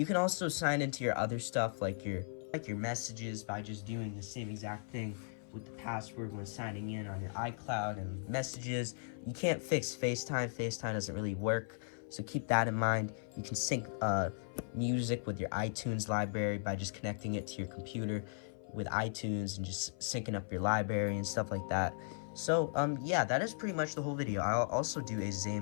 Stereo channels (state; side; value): silent; right; 53 dB below the other